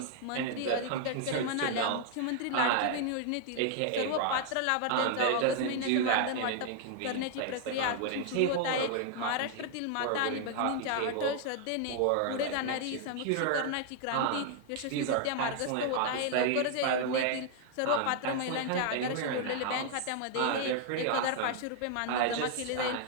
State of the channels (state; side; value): different; both; correlation 0.00